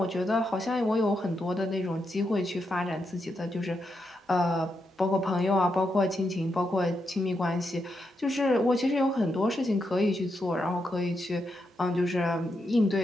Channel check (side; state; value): both; normal; correlation 0.83